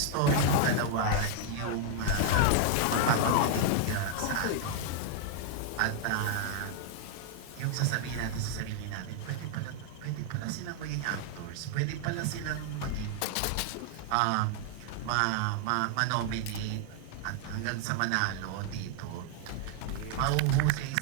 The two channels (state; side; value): different; both; correlation -0.01